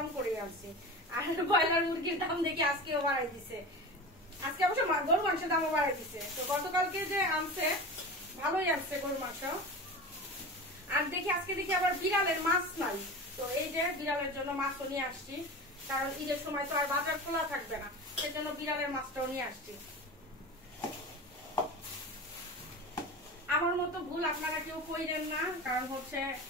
করে আনছি। আর ব্রয়লার মুরগির দাম দেখি আজকেও বাড়াই দিছে। আজকে অবশ্য গরু মাংসের দামও বাড়াই দিছে। তো গতকালকে যে আনছে ভালোই আনছে গরু মাংস। আর দেখি আজকে দেখি আবার বিড়ালের মাছ নাই, তো এই যে বিড়ালের জন্য মাছও নিয়ে আসছি। কারণ ঈদের সময় তো আর বাজার খোলা থাকবে না, সেজন্য বিড়ালের মাছটাও নিয়ে আসছি। আমার মতো ভুল আপনারা কেউ কইরেন না, কারণ হচ্ছে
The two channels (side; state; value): both; normal; correlation 0.30